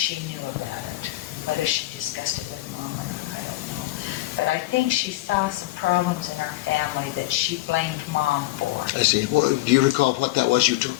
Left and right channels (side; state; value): right; quieter; 17.9 dB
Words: she knew about it. Whether she discussed it with Mom or not, I don't know. But I think she saw some problems in our family that she blamed Mom for. I see. Well, do you recall what that was you